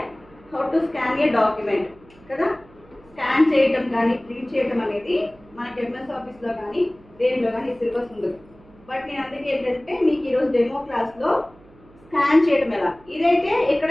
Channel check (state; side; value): noise; right; hum, 26 dB below the sound